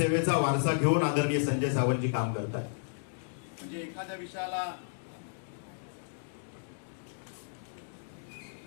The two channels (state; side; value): silent; right; digital silence